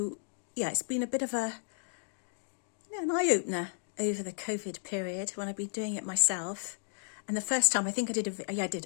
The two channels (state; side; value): silent; right; digital silence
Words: it's been a bit of an eye-opener over the COVID period when I've been doing it myself. And the first time, I did a